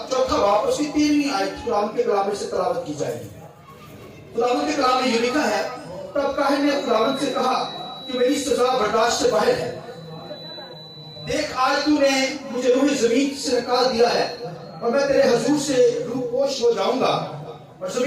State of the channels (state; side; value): identical; both; correlation 1.00